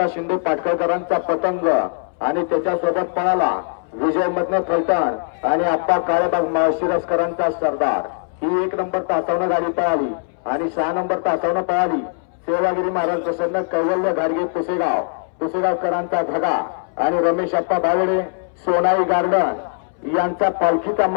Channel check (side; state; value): right; silent; 65 dB below the other